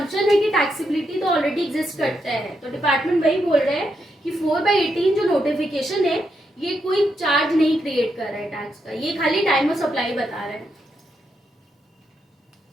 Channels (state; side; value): normal; both; correlation 0.82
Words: है कि टैक्सेबिलिटी तो ऑलरेडी एग्जिस्ट करता है। तो डिपार्टमेंट वही बोल रहे हैं कि 4/18 जो नोटिफिकेशन है ये कोई चार्ज नहीं क्रिएट कर रहा है टैक्स का, ये खाली टाइम ऑफ सप्लाई बता रहा है।